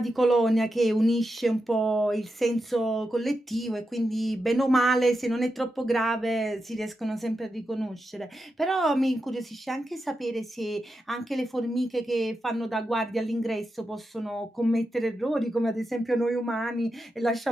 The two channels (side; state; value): both; normal; correlation 0.88